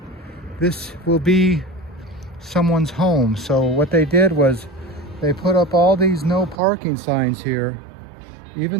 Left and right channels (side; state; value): left; drops out; at 6.6 s